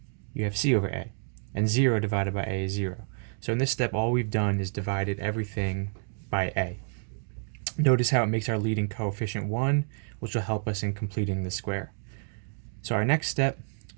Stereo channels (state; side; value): silent; left; 59 dB below the other